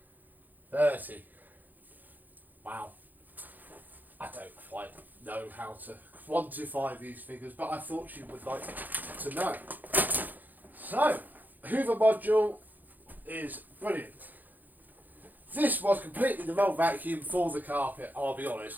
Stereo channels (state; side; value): late; left; 0.084 ms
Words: 30. Wow. I don't quite know how to quantify these figures, but I thought you would like to know. So, Hoover module is brilliant. This was completely the wrong vacuum for the carpet, I'll be